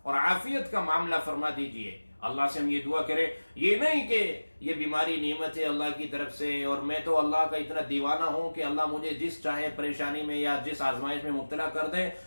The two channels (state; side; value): inverted; both; correlation -1.00